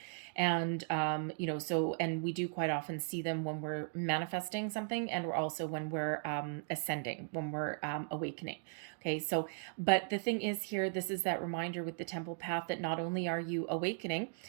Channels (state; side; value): silent; left; digital silence